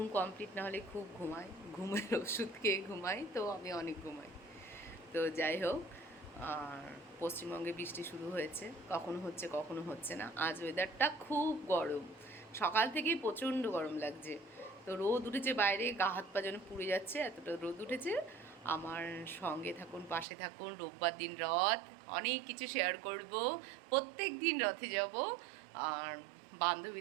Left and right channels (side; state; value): left; drops out; at 20.2 s